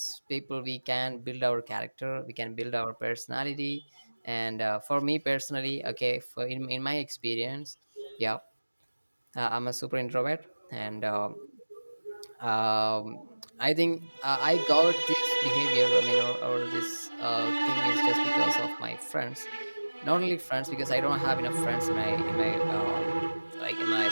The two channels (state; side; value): inverted; both; correlation -1.00